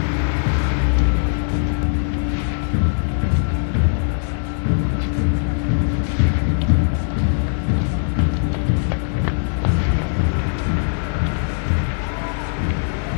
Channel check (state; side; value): silent; right; digital silence